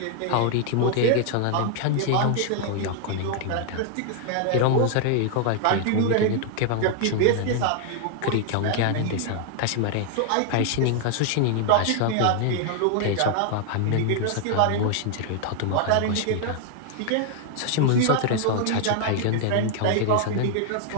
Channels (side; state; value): both; different; correlation 0.00